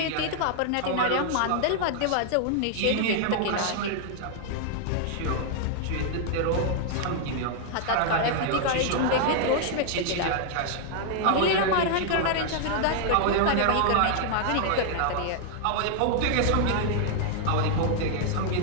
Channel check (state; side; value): different; both; correlation 0.00